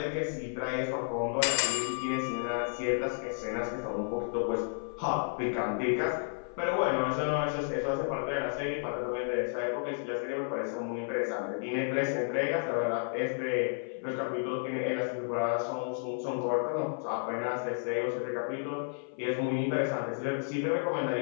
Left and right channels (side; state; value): right; silent; 56 dB below the other